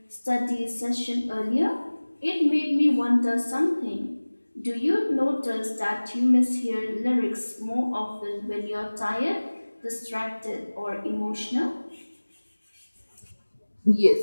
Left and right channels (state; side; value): inverted; both; correlation -1.00